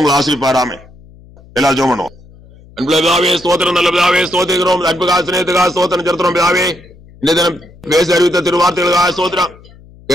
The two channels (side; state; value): left; noise; hum, 24 dB below the sound